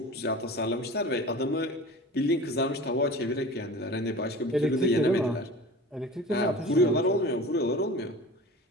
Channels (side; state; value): both; normal; correlation 0.37